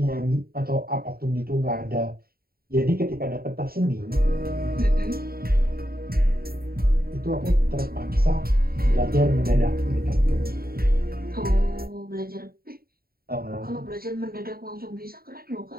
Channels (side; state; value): left; late; 0.44 ms